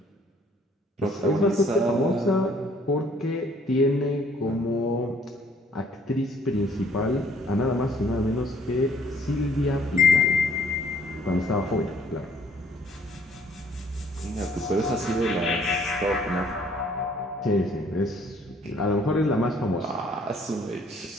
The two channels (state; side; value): normal; both; correlation 0.61